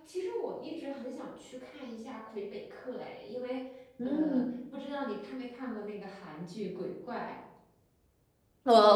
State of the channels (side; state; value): both; identical; correlation 1.00